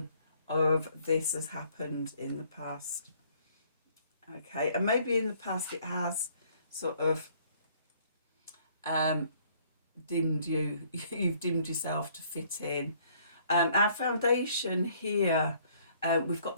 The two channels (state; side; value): inverted; both; correlation -0.62